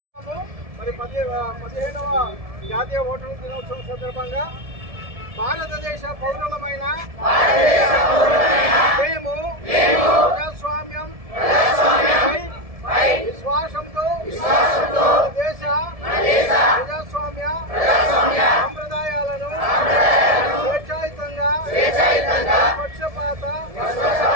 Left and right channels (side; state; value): left; late; 1.7 ms